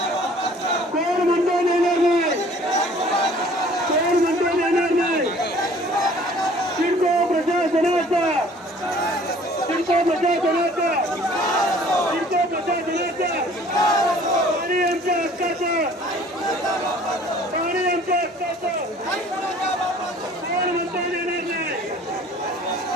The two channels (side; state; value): both; normal; correlation 0.52